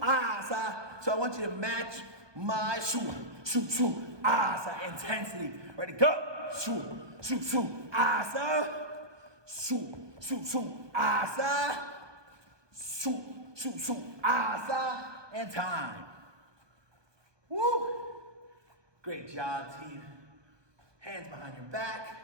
asa. So I want you to match my shoot, shoot, shoot, asa intensity. Ready, go. Shoot, shoot, shoot, asa. Shoot, shoot, shoot, asa. Shoot, shoot, shoot, asa. And time. Woo! Great job, team. Hands behind your back.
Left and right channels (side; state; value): left; late; 1.2 ms